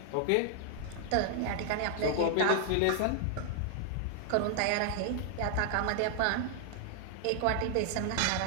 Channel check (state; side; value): different; both; correlation 0.00